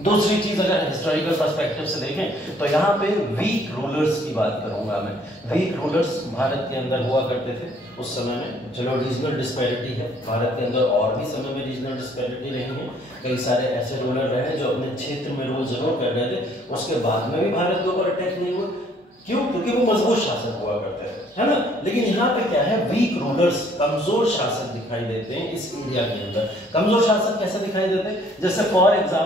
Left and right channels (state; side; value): normal; both; correlation 0.61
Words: चीज अगर हिस्टोरिकल पर्सपेक्टिव से देखें तो यहाँ पे वीक रूलर्स की बात करूंगा मैं। वीक रूलर्स भारत के अंदर हुआ करते थे उस समय में। चलो रीजनल डिस्पैरिटी है भारत के अंदर, और भी समय में रीजनल डिस्पैरिटी रही है। कई सारे ऐसे रूलर रहे जो अपने क्षेत्र में रूल जरूर कर रहे थे, उसके बाद में भी भारत के ऊपर अटैक नहीं हुआ। क्यों? क्योंकि वो मजबूत शासक हुआ करते हैं, है ना। लेकिन यहाँ पे क्या है, वीक रूलर्स, कमजोर शासक दिखाई देते हैं इस एरिया के अंदर। कमजोर शासक कैसे दिखाई देते हैं? जैसे फॉर